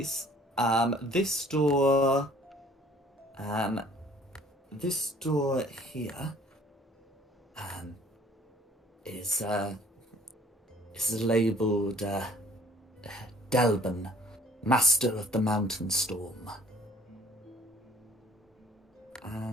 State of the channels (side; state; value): both; normal; correlation 0.55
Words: this door here is labelled Delbin, Master of the Mountain Storm,